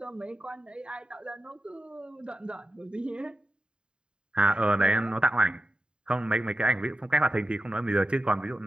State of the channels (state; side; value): late; left; 0.050 ms